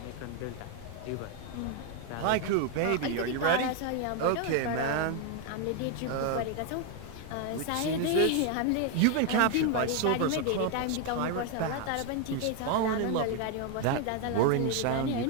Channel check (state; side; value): different; both; correlation 0.01